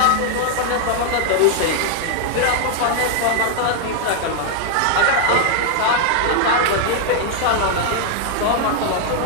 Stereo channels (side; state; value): both; different; correlation 0.00